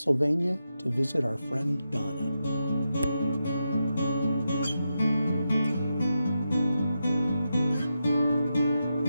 to visit our friend Donna.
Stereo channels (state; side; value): inverted; both; correlation -0.87